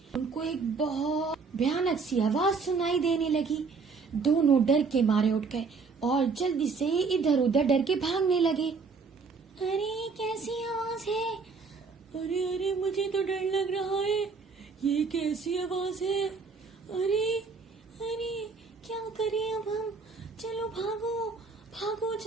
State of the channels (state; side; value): quieter; left; 4.8 dB